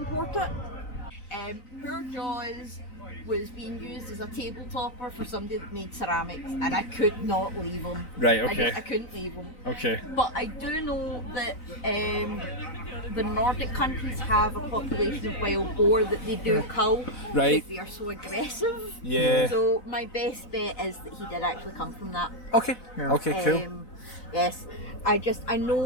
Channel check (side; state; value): right; late; 3.9 ms